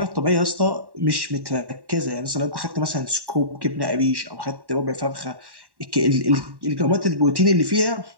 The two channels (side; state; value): left; late; 1.1 ms